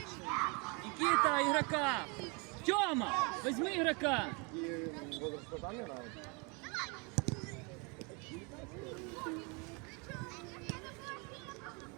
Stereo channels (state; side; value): quieter; left; 30.9 dB